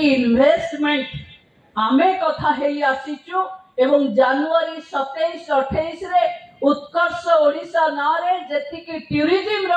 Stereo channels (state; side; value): identical; both; correlation 1.00